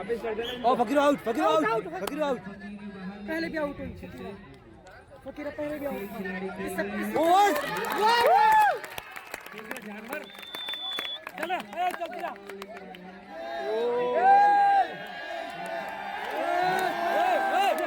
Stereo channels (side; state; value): both; identical; correlation 1.00